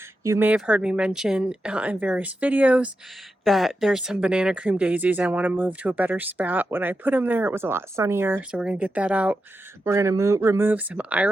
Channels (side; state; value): both; normal; correlation 0.88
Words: you may have heard me mention in various videos that there's some banana cream daisies I want to move to a better spot. When I put them there, it was a lot sunnier, so we're going to get that out. We're going to remove some